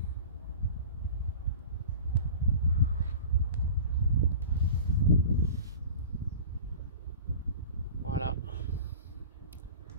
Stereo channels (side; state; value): both; inverted; correlation -0.38